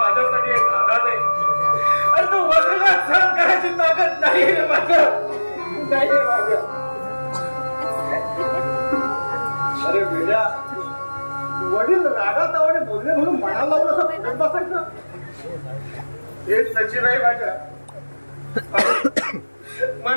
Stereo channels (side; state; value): both; inverted; correlation -1.00